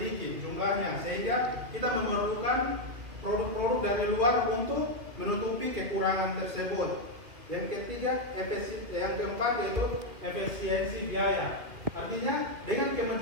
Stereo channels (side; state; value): left; late; 2.7 ms